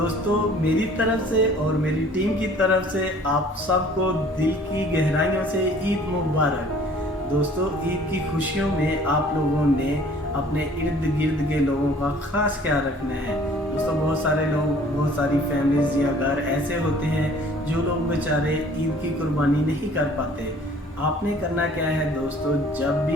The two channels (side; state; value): both; normal; correlation 0.52